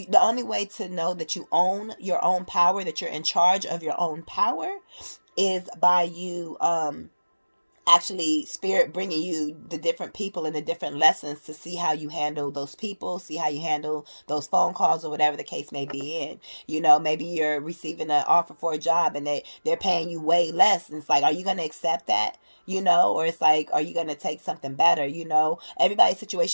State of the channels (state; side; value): inverted; both; correlation -1.00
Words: only way to know that you own your own power, that you're in charge of your own power, is by you actually Spirit bringing you the different people and the different lessons to see how you handle those people, see how you handle those phone calls, or whatever the case may be in. You know, maybe you're receiving an offer for a job and they're paying you way less, and it's like, are you going to accept that? You know, or it's like, are you going to take something better? You know, everybody's